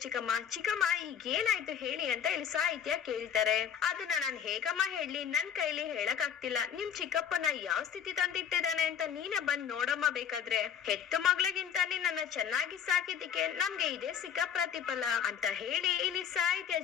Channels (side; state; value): right; quieter; 8.3 dB